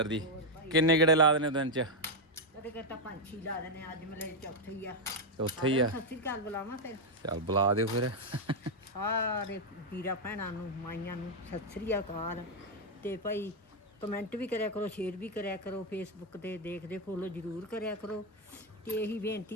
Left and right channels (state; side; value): normal; both; correlation 0.02